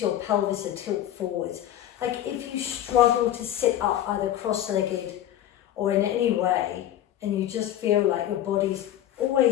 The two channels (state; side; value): quieter; right; 12.0 dB